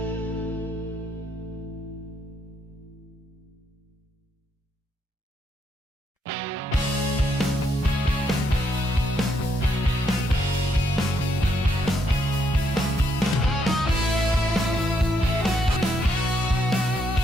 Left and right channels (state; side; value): normal; both; correlation 0.75